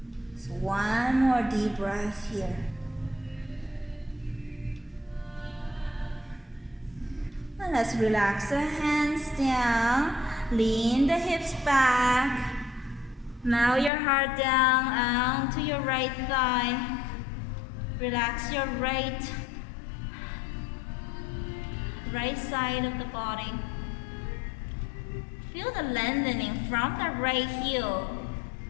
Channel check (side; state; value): right; drops out; at 13.9 s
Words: So 1 more deep breath here. And let's relax the hands down, lean the hips back. Now your heart down onto your right thigh. Relax your right side of the body. Feel the lengthening from the right heel